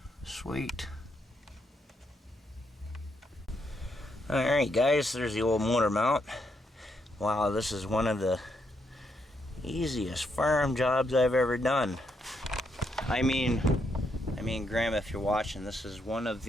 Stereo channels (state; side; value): normal; both; correlation 0.78